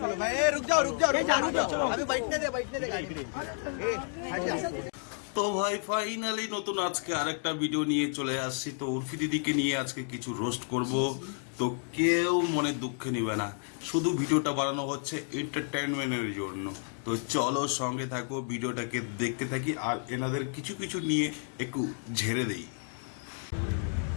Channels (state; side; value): silent; right; 57 dB below the other